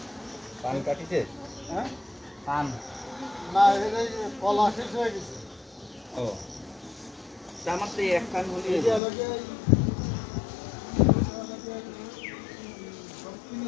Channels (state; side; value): drops out; right; at 9.0 s